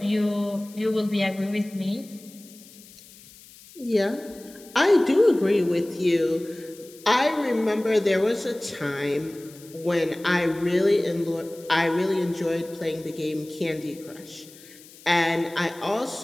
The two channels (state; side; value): noise; left; hiss, 22 dB below the sound